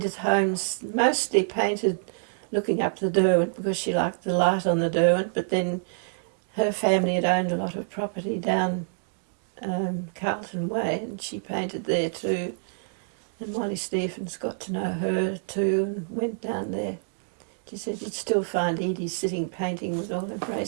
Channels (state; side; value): silent; left; digital silence